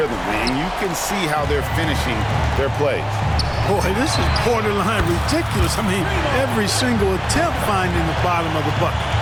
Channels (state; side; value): identical; both; correlation 1.00